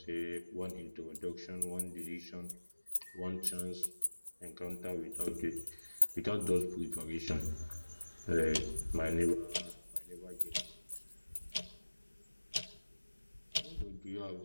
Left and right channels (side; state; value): both; inverted; correlation -1.00